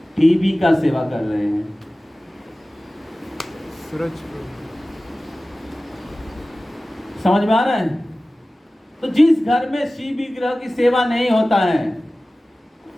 टीवी का सेवा कर रहे हैं। समझ में आ रहा है? तो जिस घर में शिव विग्रह की सेवा नहीं होता है,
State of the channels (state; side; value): normal; both; correlation 0.97